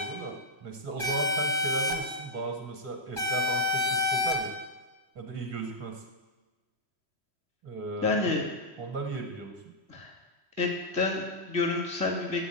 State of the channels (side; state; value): left; late; 3.1 ms